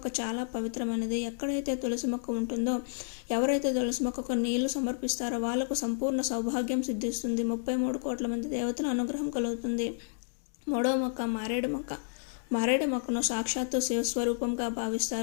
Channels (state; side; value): silent; right; digital silence